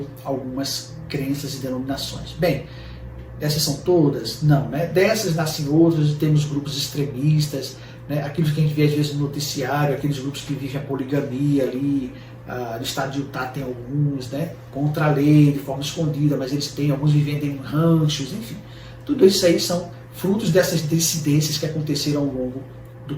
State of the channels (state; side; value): identical; both; correlation 1.00